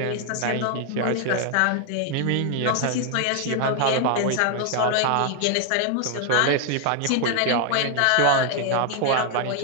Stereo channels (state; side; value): different; both; correlation 0.00